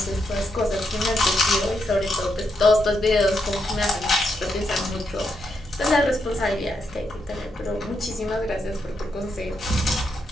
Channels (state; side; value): normal; both; correlation 0.81